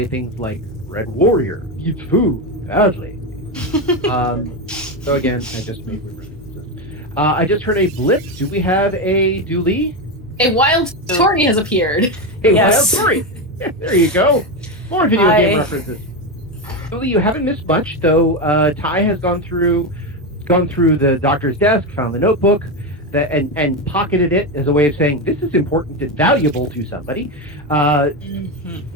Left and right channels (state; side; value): normal; both; correlation 0.13